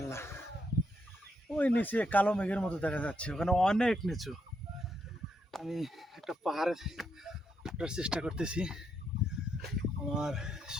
ওই নিচে কালো মেঘের মতো দেখা যাচ্ছে, ওখানে অনেক নিচু। আমি একটা পাহাড়ে ওঠার চেষ্টা করতেছি। আমার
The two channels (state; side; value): normal; both; correlation 0.78